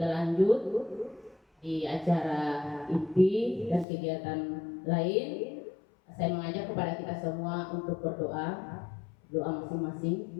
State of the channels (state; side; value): drops out; right; at 3.9 s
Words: lanjut di acara inti dan kegiatan lain, saya mengajak kepada kita semua untuk berdoa. Doa